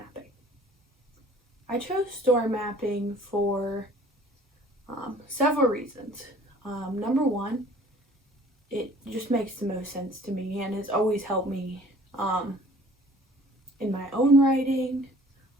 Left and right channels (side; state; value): both; normal; correlation 0.52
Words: I chose story mapping for several reasons. Number one, it just makes the most sense to me and has always helped me in my own writing